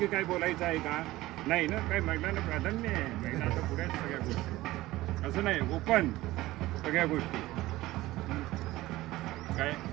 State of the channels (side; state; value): left; quieter; 17.5 dB